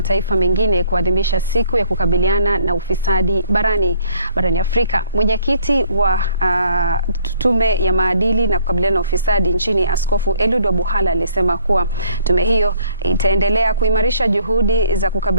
mengine kuadhimisha siku ya kukabiliana na ufisadi barani Afrika. Mwenyekiti wa tume ya maadili na kukabiliana na ufisadi nchini, Askofu Eliud Wabuhala, alisema kuwa tume hiyo itaendelea kuimarisha juhudi za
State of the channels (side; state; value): both; inverted; correlation -0.61